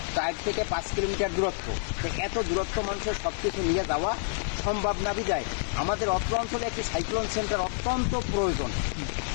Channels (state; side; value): silent; right; digital silence